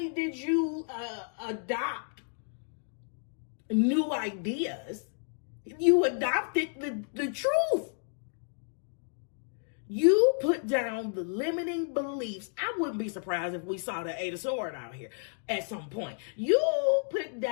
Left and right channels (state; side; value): silent; right; 57 dB below the other